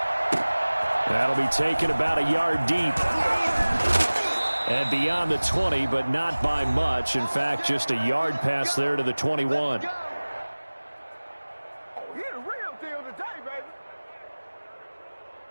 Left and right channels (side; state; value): both; inverted; correlation -1.00